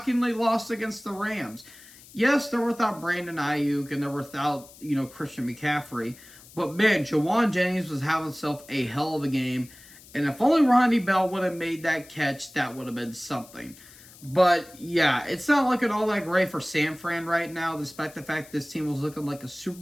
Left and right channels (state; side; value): noise; left; hiss, 21 dB below the sound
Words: lost against the Rams. Yes, they're without Brandon Ayuk, and they're without, Christian McCaffrey. But, man, Jawan Jennings was having himself a hell of a game. And if only Ronnie Bell would have made that catch, that would have been something. But, yeah, it's not looking all that great for San Fran right now, despite the fact this team was looking like a Super